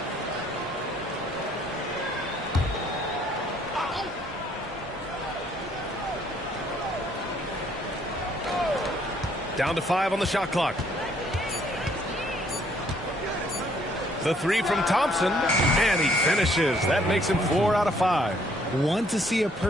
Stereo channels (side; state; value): both; normal; correlation 0.65